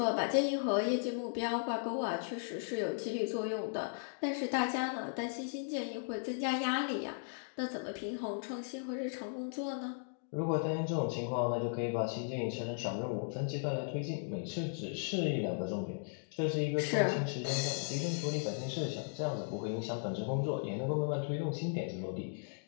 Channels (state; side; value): silent; right; digital silence